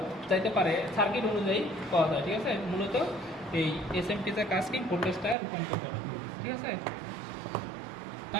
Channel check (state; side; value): drops out; left; at 5.4 s